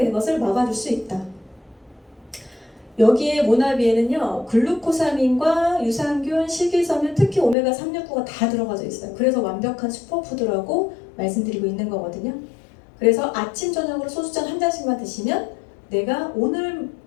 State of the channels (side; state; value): right; drops out; at 7.6 s